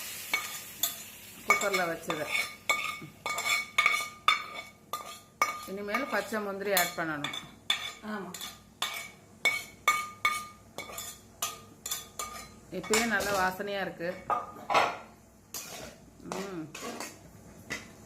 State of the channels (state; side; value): identical; both; correlation 1.00